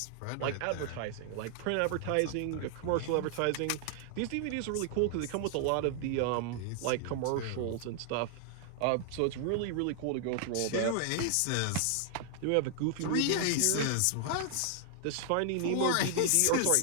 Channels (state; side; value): different; both; correlation 0.00